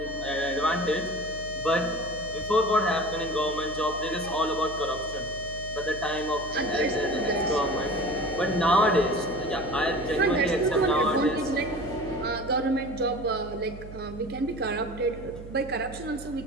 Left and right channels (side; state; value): right; noise; hum, 13 dB below the sound